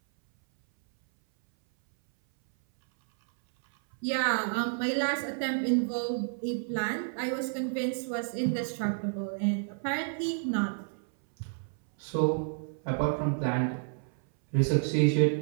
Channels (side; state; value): left; silent; 58 dB below the other